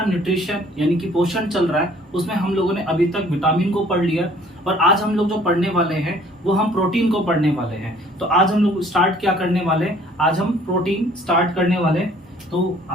न्यूट्रिशन यानी कि पोषण चल रहा है, उसमें हम लोगों ने अभी तक विटामिन को पढ़ लिया और आज हम लोग जो पढ़ने वाले हैं वो हम प्रोटीन को पढ़ने वाले हैं। तो आज हम लोग स्टार्ट क्या करने वाले हैं, आज हम प्रोटीन स्टार्ट करने वाले हैं। तो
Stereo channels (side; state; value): both; normal; correlation 0.56